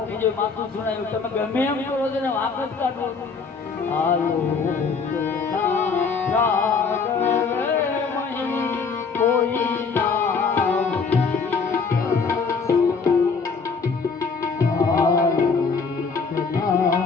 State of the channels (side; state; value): right; quieter; 5.0 dB